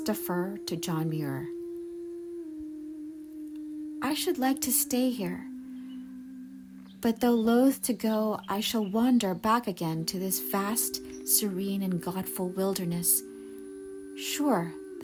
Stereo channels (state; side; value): identical; both; correlation 1.00